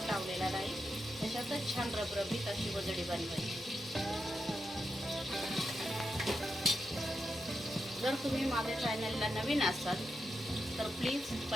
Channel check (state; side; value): normal; both; correlation 0.86